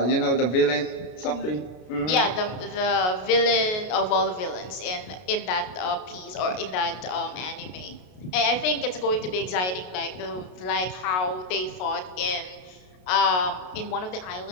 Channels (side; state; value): right; late; 32 ms